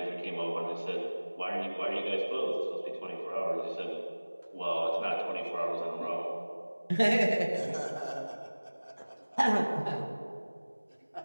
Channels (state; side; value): inverted; both; correlation -1.00